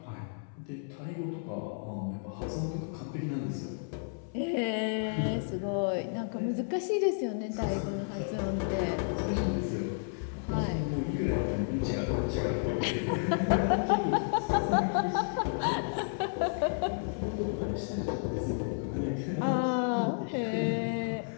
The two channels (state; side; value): silent; right; 57 dB below the other